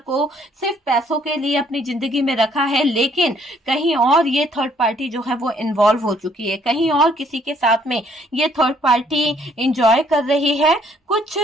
को सिर्फ पैसों के लिए अपनी जिंदगी में रखा है, लेकिन कहीं और ये थर्ड पार्टी जो है वो इन्वॉल्व हो चुकी है, कहीं और किसी के साथ में ये थर्ड पार्टी इंजॉय कर रही है। कुछ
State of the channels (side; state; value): both; normal; correlation 0.64